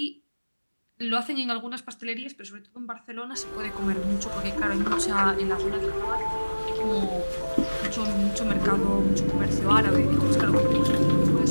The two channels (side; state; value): both; inverted; correlation -1.00